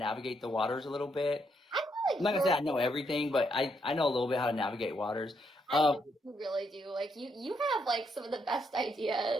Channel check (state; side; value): normal; both; correlation 0.76